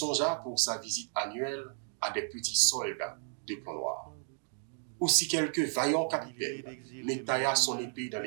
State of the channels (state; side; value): silent; left; 56 dB below the other